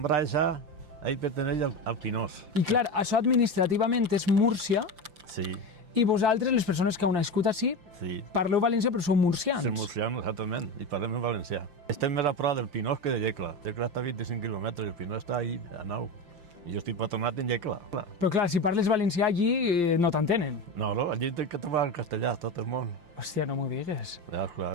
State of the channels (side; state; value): left; late; 5.7 ms